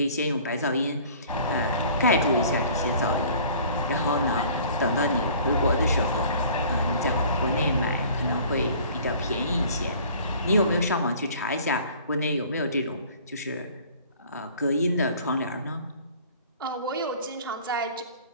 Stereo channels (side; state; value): both; inverted; correlation -0.50